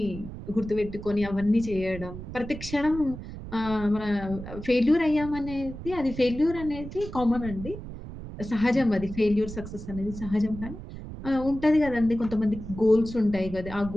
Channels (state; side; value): noise; right; rumble, 11 dB below the sound